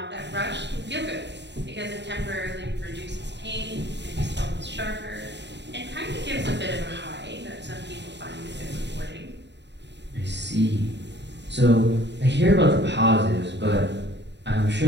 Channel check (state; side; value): late; left; 0.51 ms